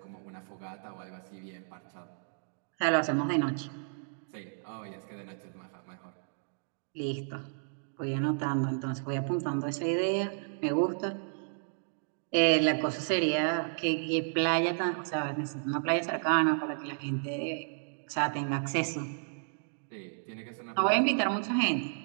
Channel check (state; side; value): silent; left; digital silence